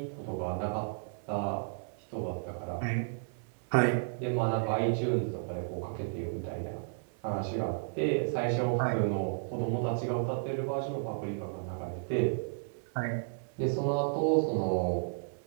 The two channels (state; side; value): silent; left; 56 dB below the other